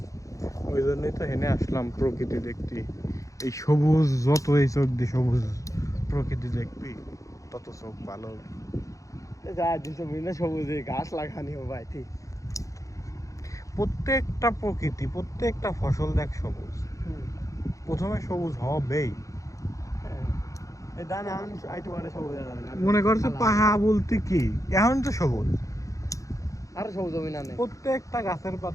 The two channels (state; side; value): late; right; 0.16 ms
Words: ওই জন্যই তো হেনে আসলাম প্রকৃতি দেখতে এই সবুজ যত এই চোখ দিয়ে সবুজ প্রকৃতি দেখবি তত চোখ ভালো যা দিনটা বিভিন্ন সবুজে গাছ লাগানি ও ভাই ঠিক প্রত্যেকটা প্রকৃতি প্রত্যেকটা ফসল দেখ সবুজ প্রথমে সবুজ হবেই এই দানা আইটু মানে সবুজ যাবে না মনে করছে পাহা বলতে কি এখন তো সবুজ আর সবুজ জমি না নেই প্রত্যেকটা গাছের